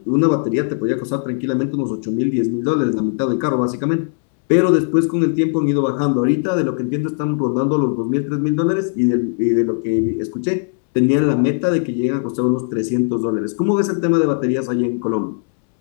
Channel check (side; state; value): right; silent; 67 dB below the other